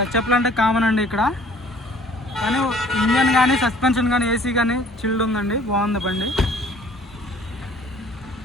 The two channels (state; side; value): normal; both; correlation 0.54